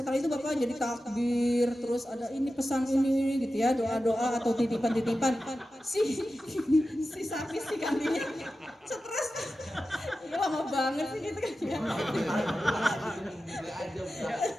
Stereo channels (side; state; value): both; normal; correlation 0.93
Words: itu Bapak jadi takbir, terus ada ini pesan ini gitu ya, doa-doa atau titipan-titipan. Si sapi si kambingnya stres, ya lama banget sih gitu kan ya.